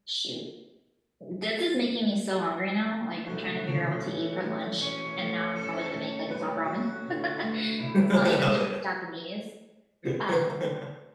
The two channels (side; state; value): both; identical; correlation 1.00